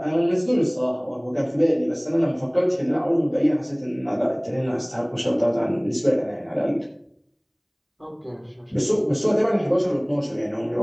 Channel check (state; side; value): identical; both; correlation 1.00